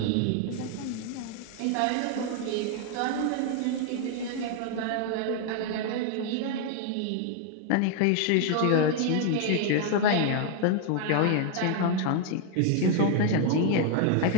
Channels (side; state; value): both; different; correlation 0.00